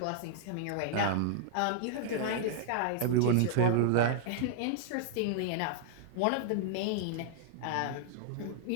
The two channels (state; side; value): different; both; correlation -0.01